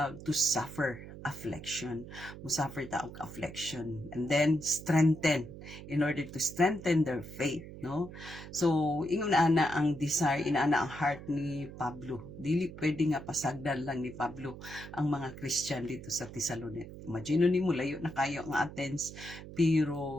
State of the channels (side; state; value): right; noise; hum, 13 dB below the sound